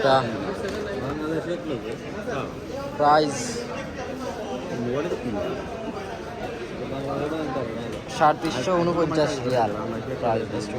price 349 Real. Price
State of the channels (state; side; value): identical; both; correlation 1.00